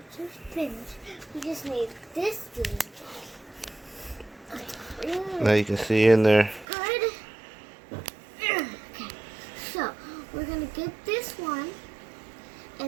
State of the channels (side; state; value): left; drops out; at 6.7 s